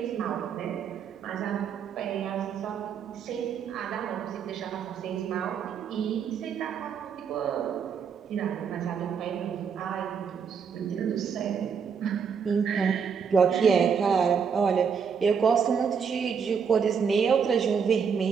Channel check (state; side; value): quieter; left; 6.6 dB